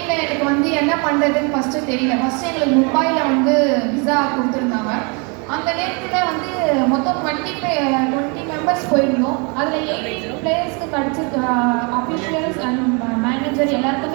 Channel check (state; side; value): quieter; left; 33.0 dB